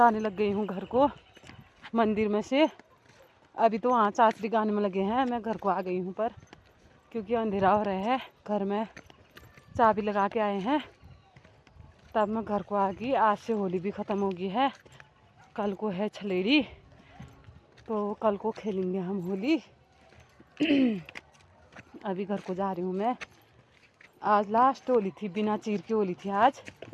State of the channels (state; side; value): identical; both; correlation 1.00